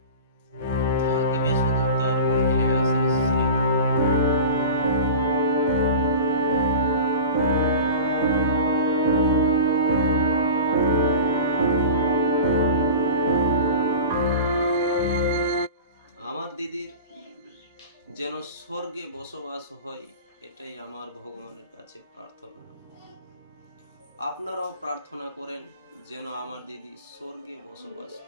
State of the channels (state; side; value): inverted; both; correlation -0.35